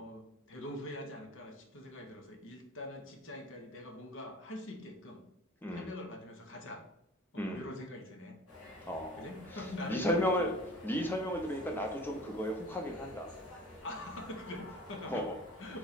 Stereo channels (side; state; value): both; normal; correlation 0.43